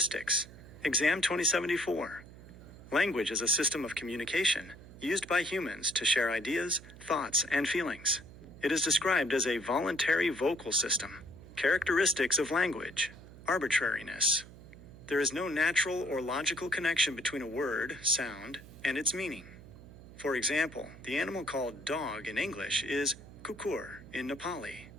Exam 2074. Language is a system of communication used by humans to share ideas, thoughts, and feelings. It is described as a voluntary vocal system. Characteristics of language. Arbitrariness. There is no natural or logical connection between a word, sound, and its meaning. For example, the animal called dog in English is kukur in Nepali.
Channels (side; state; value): right; noise; hum, 18 dB below the sound